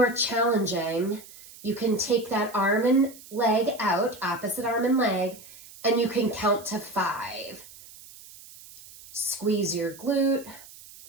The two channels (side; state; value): right; noise; hiss, 19 dB below the sound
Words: challenging, you can take that arm and leg out, opposite arm and leg, and you can count to 5. Squeeze your glute,